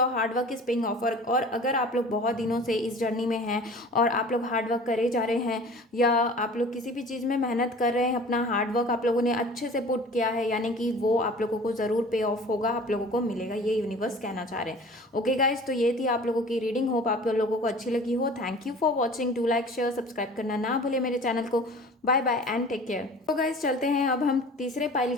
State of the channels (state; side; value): normal; both; correlation 0.43